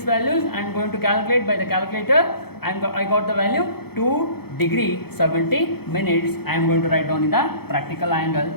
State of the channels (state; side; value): late; right; 0.96 ms